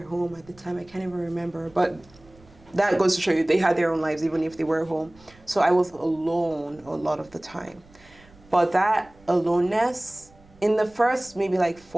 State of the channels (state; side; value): noise; right; rumble, 27 dB below the sound